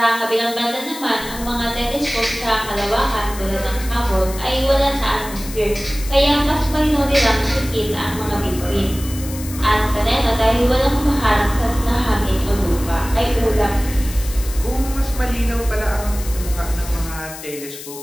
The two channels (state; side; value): noise; left; hiss, 13 dB below the sound